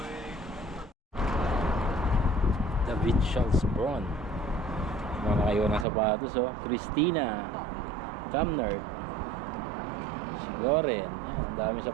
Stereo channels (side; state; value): left; drops out; at 5.9 s